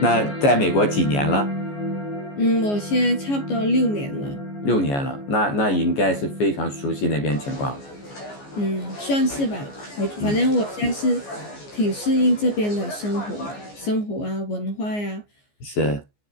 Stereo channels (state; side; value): late; right; 14 ms